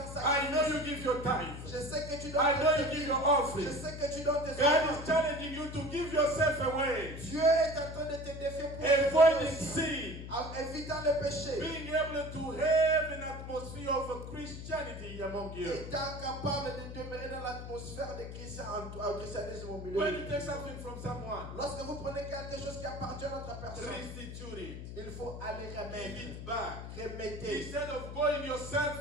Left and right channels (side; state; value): left; noise; hum, 9 dB below the sound